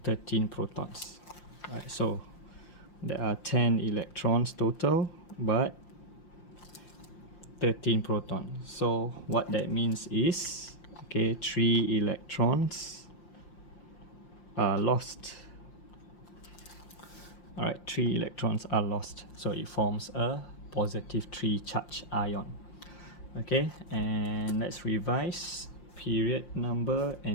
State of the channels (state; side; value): late; right; 5.7 ms